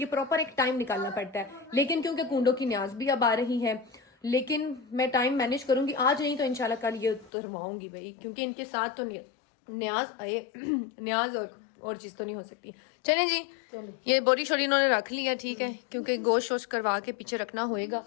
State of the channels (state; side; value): drops out; right; at 7.3 s